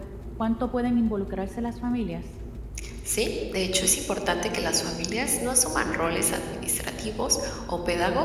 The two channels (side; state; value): both; identical; correlation 1.00